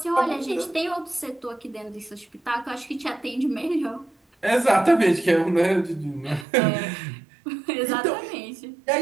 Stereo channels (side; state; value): left; drops out; at 6.5 s